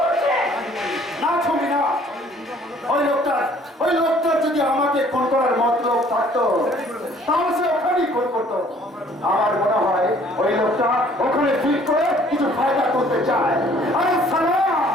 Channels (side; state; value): both; normal; correlation 0.57